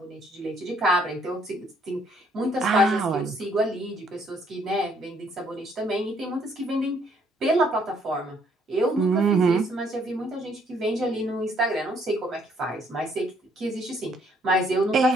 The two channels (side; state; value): both; normal; correlation 0.66